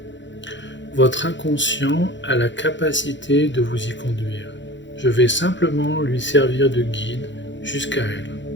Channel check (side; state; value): right; late; 0.54 ms